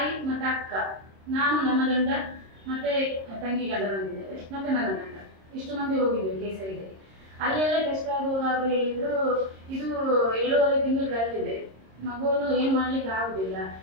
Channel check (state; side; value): late; left; 26 ms